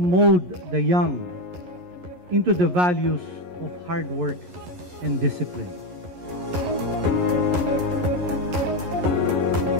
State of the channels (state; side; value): late; left; 11 ms